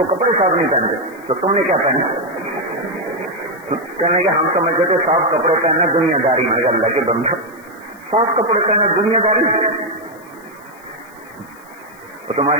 کپڑے صاف نہیں پہنتے تو تم نے کیا پہنا؟ کہنے کہ ہم سمجھتے تھے صاف کپڑے پہننا دنیا داری ہے. اللہ کے بندہ، صاف کپڑے پہننا دنیا داری؟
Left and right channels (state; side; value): noise; left; hiss, 27 dB below the sound